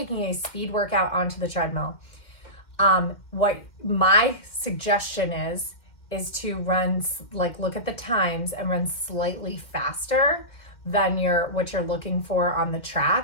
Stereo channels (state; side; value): late; right; 2.1 ms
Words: a speed workout onto the treadmill, what my suggestion is to run, look at the times and run slightly faster than what you're looking for on the